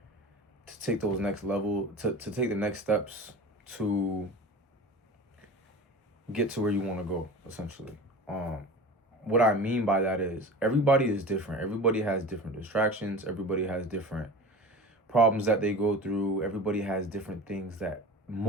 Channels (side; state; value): both; normal; correlation 0.34